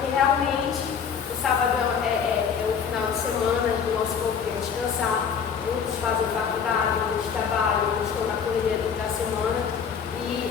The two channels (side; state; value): right; quieter; 6.9 dB